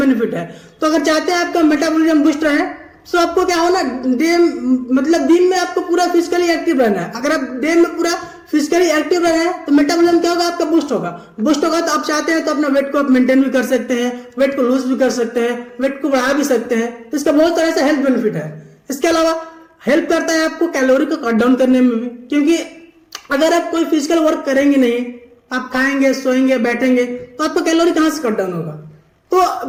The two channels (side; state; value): both; identical; correlation 1.00